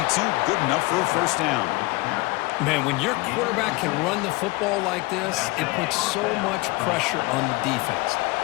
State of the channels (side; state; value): right; quieter; 23.0 dB